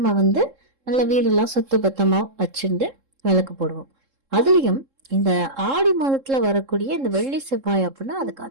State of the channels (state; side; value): late; left; 3.7 ms